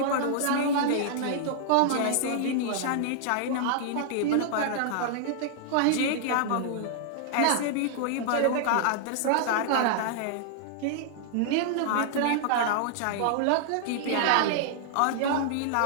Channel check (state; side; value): different; both; correlation -0.01